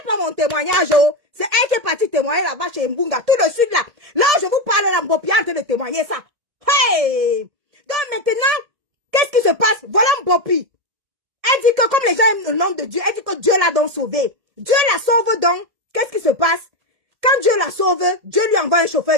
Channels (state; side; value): late; left; 1.7 ms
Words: pas mon témoignage, oh. C'est elle qui est partie témoigner là-bas chez Mbunga, tout de suite là. Là, je vous parle là, Mbopi en train de témoigner ça. Hey! Donc maintenant, qu'est-ce qui se passe? Voilà Mbopi. Elle dit que comme les gens aiment le nom de Dieu, elle dit que Dieu l'a donc sauvé. Dieu la sauve donc. Qu'est-ce qui se passe? Quand Dieu la sauve, Dieu lui envoie un